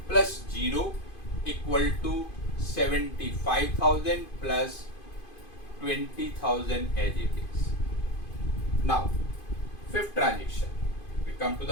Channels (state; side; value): late; right; 2.5 ms